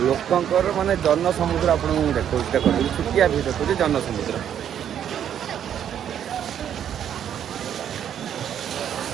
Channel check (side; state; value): left; quieter; 9.5 dB